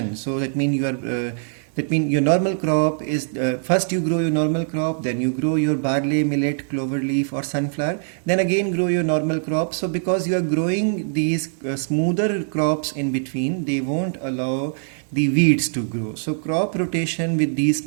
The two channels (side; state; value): left; silent; 64 dB below the other